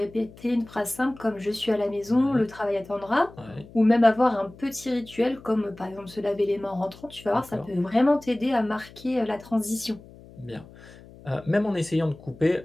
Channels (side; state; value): left; noise; hum, 21 dB below the sound